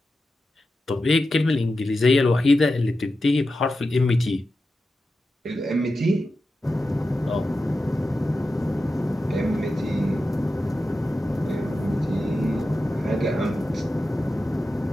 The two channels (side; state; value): both; normal; correlation 0.91